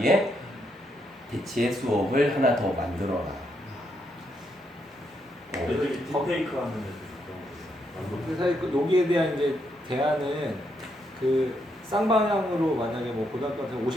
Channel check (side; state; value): both; normal; correlation 0.78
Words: 대체 수업을 하나 더 만들어라. 애들이 딥페이크 하는 애들 근데 사실 여기에 대한 이제 대안은 그 쌍방향으로 만약에 뭐 고등학교 같은